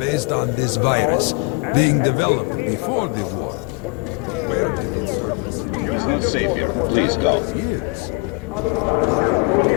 on this virus being developed before the war. Where did it surface? It is not safe here. Please stop.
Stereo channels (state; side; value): quieter; right; 32.8 dB